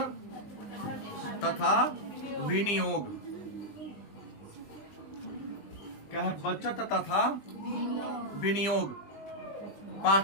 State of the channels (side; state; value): right; late; 20 ms